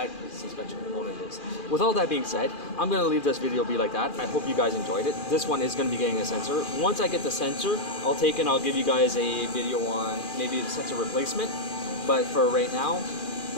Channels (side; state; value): right; late; 2.4 ms